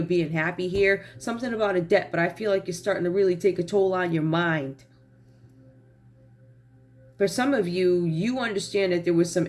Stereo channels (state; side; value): identical; both; correlation 1.00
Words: being happy here. Something about a debt, but I feel like it's starting to really take a toll on your mind. For some of you, you understand that there was some